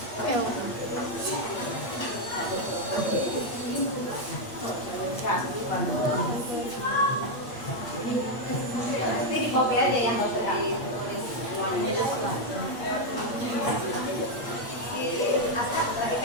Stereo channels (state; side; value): late; right; 8.7 ms